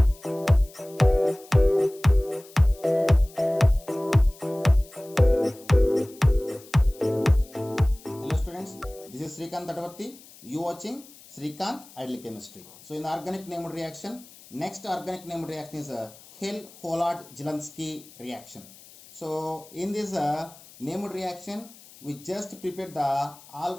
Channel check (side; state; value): left; noise; hiss, 22 dB below the sound